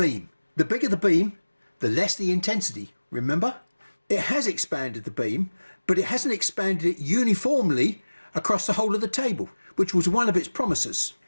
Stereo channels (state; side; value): inverted; both; correlation -1.00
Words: The bigger the beam, the less the intensity, remember? It has expanded the beam, but it hasn't expanded it uniformly across the whole of the table, which was one of its promises.